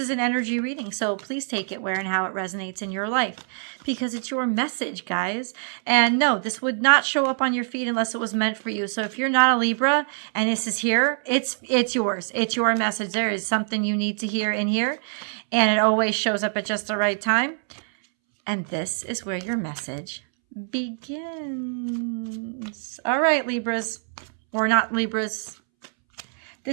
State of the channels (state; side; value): silent; left; 62 dB below the other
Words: an energy reading. So please take it where and how it resonates in your life, because it's your message, guys. And no, this would not show up on your feed unless it was meant for you. So if you're not a Libra and this is here, it's yours. It's your message. There is something you need to hear in here. And it always shows up at just the right time. And this is where your message begins. All right, Libras, or not Libras.